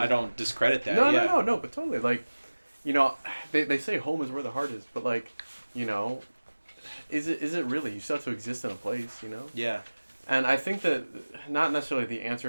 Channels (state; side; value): inverted; both; correlation -1.00